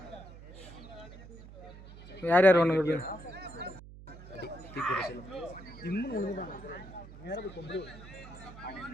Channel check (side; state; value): right; noise; hum, 16 dB below the sound